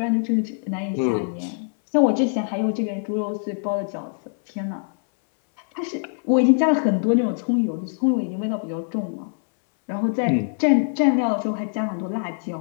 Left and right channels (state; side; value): silent; right; 63 dB below the other